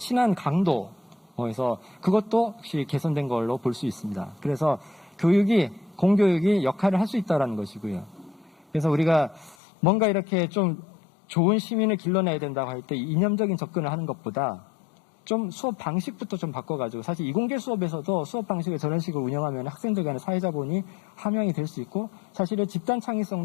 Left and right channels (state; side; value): drops out; right; at 9.6 s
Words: 강도에서 그것도 혹시 개선된 걸로 볼 수 있습니다. 그래서 공교육이 역할을 할 수 있다는 것이고요. 그래서 우리가 뭔가 이렇게 좀 좋은 시민을 길러내야 된다고 할 때 이념적인 접근을 하는 것보다 좀 수업 방식부터 좀 바꿔가지고, 사실 이공계 수업에서도 수업 방식을 저런 식으로 운영하면 학생들 간의 사회자본이 함양이 될 수 있고 사실은 집단